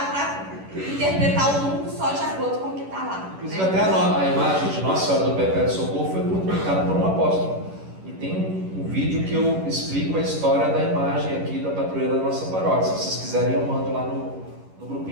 interpretar o mundo só de acordo com o que está lá. Inclusive né? até a imagem de Nossa Senhora do Perpétuo Socorro foi publicada por um apóstolo. E tem um vídeo que eu explico a história da imagem aqui da padroeira da nossa paróquia. Se vocês quiserem, eu mando lá no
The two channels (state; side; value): late; left; 11 ms